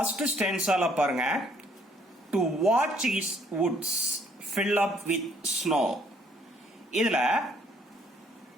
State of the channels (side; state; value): both; normal; correlation 0.64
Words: ஸ்டான்ஸால பாருங்க. To watch his woods fill up with snow. இதுல